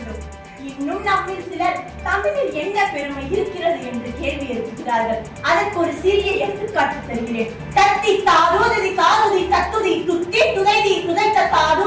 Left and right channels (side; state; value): both; identical; correlation 1.00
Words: இன்னும் நம்மில் சிலர் தமிழில் என்ன பெருமை இருக்கிறது என்று கேள்வி எழுப்புகிறார்கள். அதற்கு ஒரு சிறிய எடுத்துக்காட்டு தருகிறேன். தத்தி தாரூதி தாருதி தத்துதி துத்தி துதைதி துதைத்த